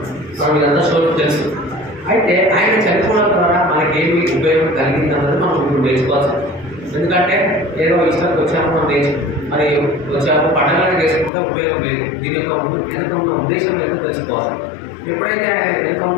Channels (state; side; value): drops out; right; at 11.3 s